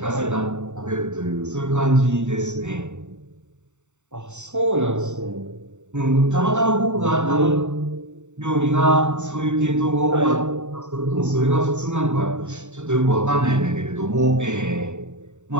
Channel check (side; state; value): left; late; 0.84 ms